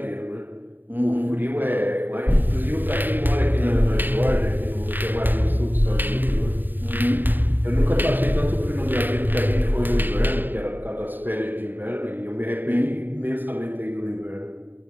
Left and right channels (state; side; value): late; left; 0.091 ms